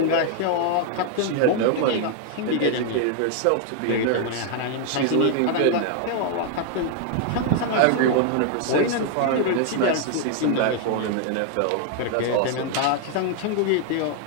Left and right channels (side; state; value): both; different; correlation 0.00